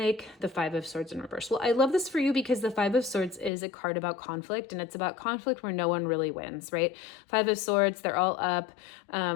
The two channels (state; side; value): drops out; right; at 3.5 s